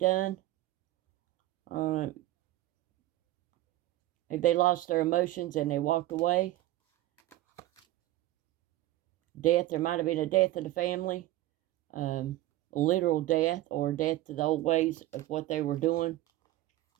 If they lost their emotions and they walked away. Death. There might have been a death in the family. A literal death or death to the old ways of what they were doing.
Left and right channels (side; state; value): left; quieter; 15.8 dB